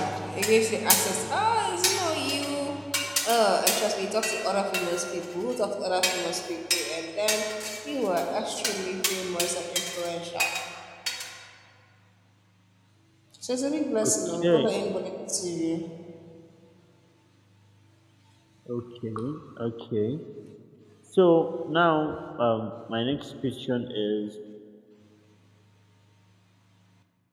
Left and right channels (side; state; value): both; identical; correlation 1.00